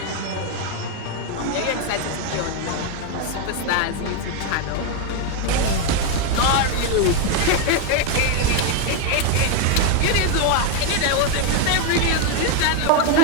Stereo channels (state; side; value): different; both; correlation 0.01